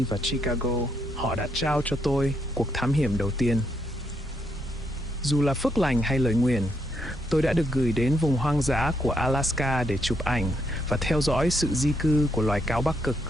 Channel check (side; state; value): both; normal; correlation 0.76